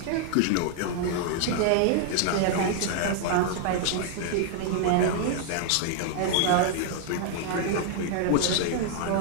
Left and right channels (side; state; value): both; different; correlation 0.00